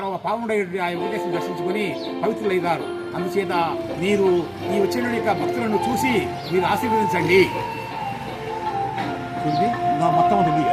పావనుడై ఆ వెంకటేశ్వరుని దర్శించుకొని పవిత్రులైనారు. అందుచేత మీరు ఈ వచ్చిన యొక్క భక్తులను చూసి మీరు ఆశీర్వదించండి. మొత్తం ఉంది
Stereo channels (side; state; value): both; identical; correlation 1.00